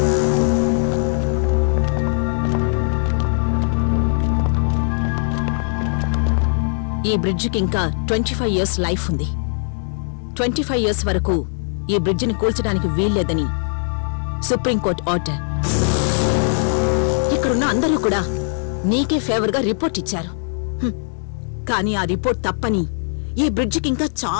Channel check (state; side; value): silent; right; digital silence